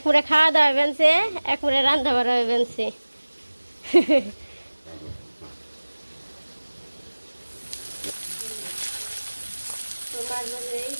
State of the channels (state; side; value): inverted; both; correlation -1.00